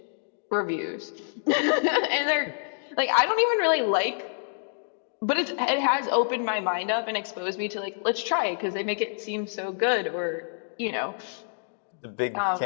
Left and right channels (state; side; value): silent; right; digital silence